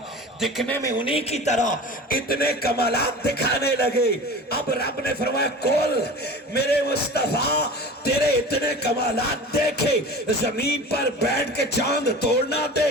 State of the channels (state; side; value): normal; both; correlation 0.36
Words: دکھنے میں انہی کی طرح اتنے کمالات دکھانے لگے۔ اب رب نے فرمایا کول میرے مصطفیٰ تیرے اتنے کمالات دیکھے، زمین پر بیٹھ کے چاند توڑنا